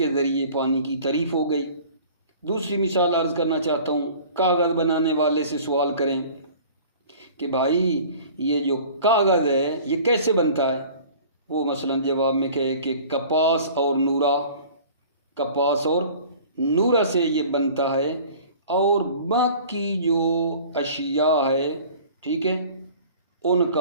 ذریعے پانی کی تعریف ہو گئی۔ دوسری مثال عرض کرنا چاہتا ہوں، کاغذ بنانے والے سے سوال کریں کہ بھائی یہ جو کاغذ ہے یہ کیسے بنتا ہے؟ وہ مثلا جواب میں کہے کہ کپاس اور نورا سے یہ بنتا ہے، اور باقی جو اشیاء ہے، ٹھیک ہے، ان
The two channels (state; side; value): inverted; both; correlation -0.46